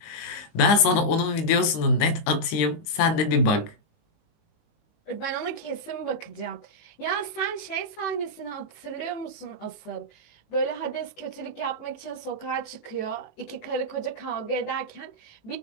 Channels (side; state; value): right; late; 19 ms